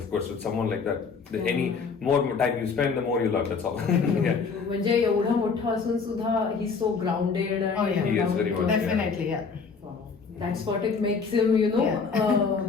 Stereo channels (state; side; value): quieter; right; 5.2 dB